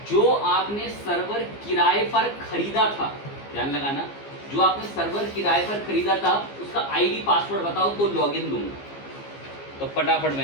जो आपने सर्वर किराए पर खरीदा था, ध्यान लगाना, जो आपने सर्वर किराए पर खरीदा था उसका आईडी पासवर्ड बताओ तो लॉगिन दूंगा। तो फटाफट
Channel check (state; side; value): late; right; 15 ms